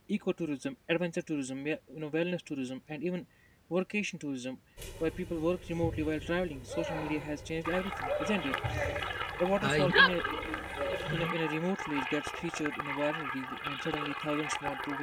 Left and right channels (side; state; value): both; identical; correlation 1.00